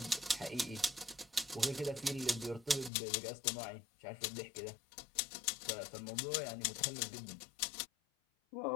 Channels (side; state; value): right; drops out; at 2.9 s